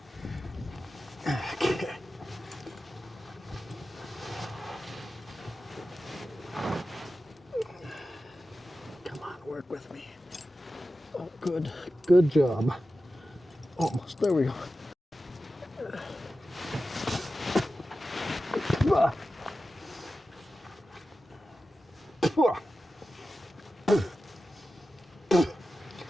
Okay. Come on, work with me. Oh, good. Good job. Almost. There we go.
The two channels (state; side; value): normal; both; correlation 0.93